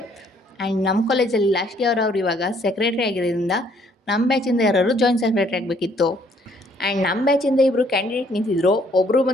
ಆ್ಯಂಡ್ ನಮ್ಮ ಕಾಲೇಜಲ್ಲಿ ಲಾಸ್ಟ್ ಇಯರ್ ಅವ್ರು ಇವಾಗ ಸೆಕ್ರೆಟರಿ ಆಗಿರೋದ್ರಿಂದ ನಮ್ಮ ಬ್ಯಾಚಿಂದ ಯಾರು ಜಾಯಿಂಟ್ ಸೆಕ್ರೆಟರಿ ಆಗಬೇಕಿತ್ತು. ಆ್ಯಂಡ್ ನಮ್ಮ ಬ್ಯಾಚಿಂದ ಇಬ್ಬರು ಕ್ಯಾಂಡಿಡೇಟ್ ನಿಂತಿದ್ರು. ಒಬ್ಬರು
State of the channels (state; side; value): normal; both; correlation 0.64